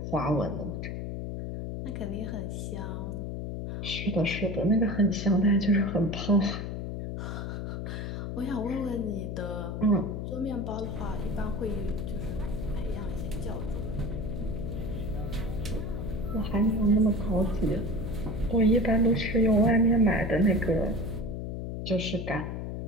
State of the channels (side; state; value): left; noise; hum, 4 dB below the sound